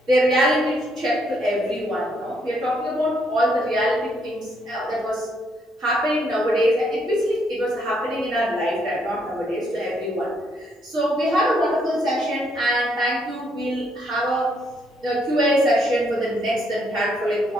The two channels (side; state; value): both; normal; correlation 0.72